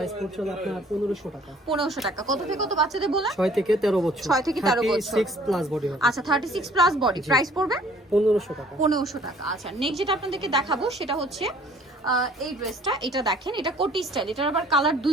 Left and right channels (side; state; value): both; normal; correlation 0.56